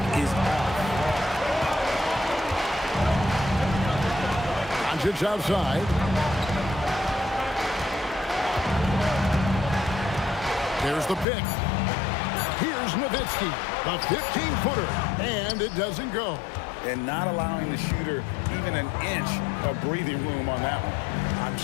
is off. Doncic outside. There's the pick. Here's Nowitzki, the 15-footer, and it doesn't go. And not allowing the shooter even an inch of breathing room on that one. I'm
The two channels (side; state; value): right; drops out; at 11.2 s